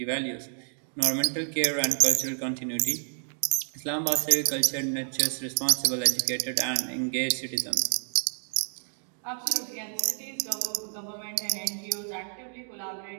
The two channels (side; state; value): left; silent; 59 dB below the other